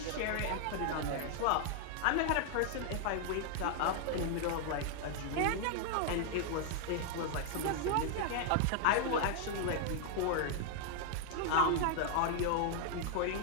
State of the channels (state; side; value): different; both; correlation 0.00